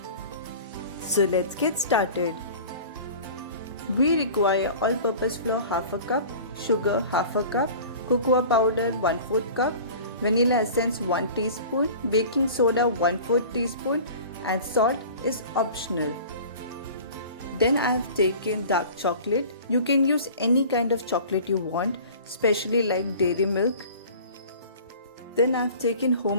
So let's get started. We require all-purpose flour half a cup, sugar half a cup, cocoa powder 1/4 cup, vanilla essence 1 teaspoon, baking soda 1/4 teaspoon and salt is optional. Then I have taken dark chocolate. You can use any kind of chocolate you want, especially like dairy milk. Then I have taken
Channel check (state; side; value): inverted; both; correlation -0.42